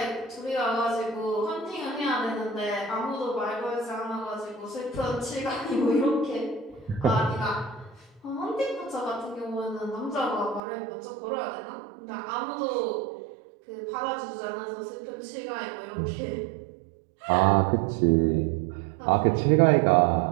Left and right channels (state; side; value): drops out; left; at 10.6 s